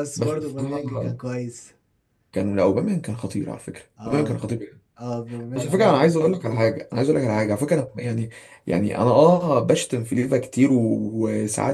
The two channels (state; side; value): identical; both; correlation 1.00